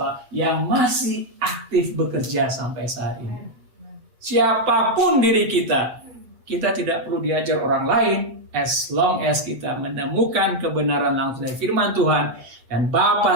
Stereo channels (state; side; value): late; left; 8.0 ms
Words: yang masih aktif bekerja sampai saat ini. Siapapun diri kita, kita tidak perlu diajar orang lain, as long as kita menemukan kebenaran langsung dari firman Tuhan, dan